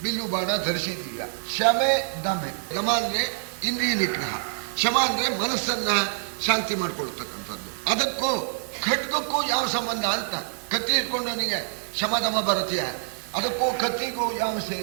ಬಿಲ್ಲು ಬಾಣ ಧರಿಸಿದೀಯಾ. ಶಮೆ ದಮೆ, ದಮ ಅಂದ್ರೆ ಇಂದ್ರಿಯ ನಿಗ್ರಹ, ಶಮ ಅಂದ್ರೆ ಮನಸ್ಸನ್ನ ಶಾಂತಿ ಮಾಡ್ಕೊಳ್ತಕ್ಕಂಥದ್ದು. ಅದಕ್ಕೂ ಖಡ್ಗಕ್ಕೂ ಯಾವ ಸಂಬಂಧ ಅಂತ. ಕತ್ತಿ ಇಟ್ಕೊಂಡವನಿಗೆ ಶಮದಮ ಬರುತ್ತೀಯ, ಅದಕ್ಕೂ ಕತ್ತಿಗೂ ಯಾವ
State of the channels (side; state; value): left; silent; digital silence